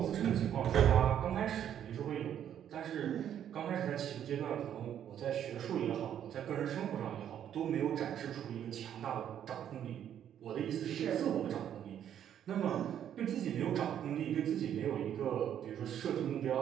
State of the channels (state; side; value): quieter; left; 9.9 dB